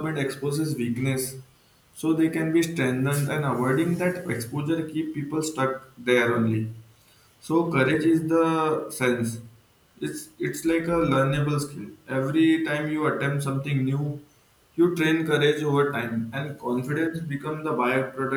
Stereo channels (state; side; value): identical; both; correlation 1.00